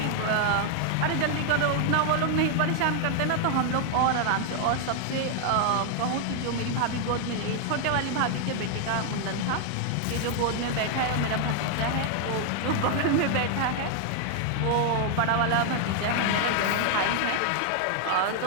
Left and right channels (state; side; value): different; both; correlation 0.00